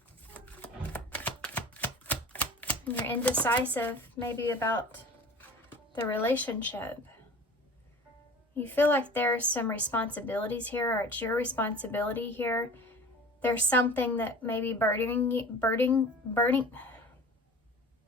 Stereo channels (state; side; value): normal; both; correlation 0.41